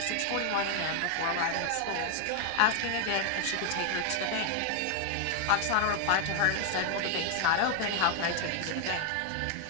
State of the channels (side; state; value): both; different; correlation 0.00